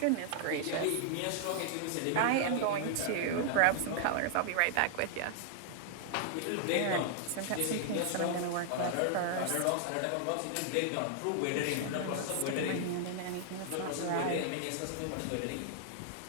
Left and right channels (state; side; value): different; both; correlation 0.00